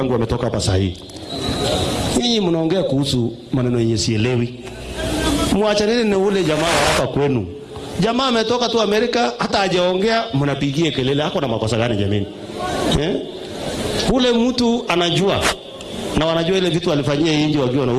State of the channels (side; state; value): both; identical; correlation 1.00